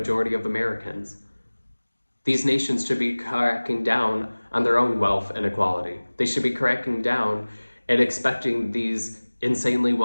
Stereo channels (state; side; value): inverted; both; correlation -1.00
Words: of Americans. These nations should be cracking down on their own wealth inequality. They should be cracking down and expecting these insanely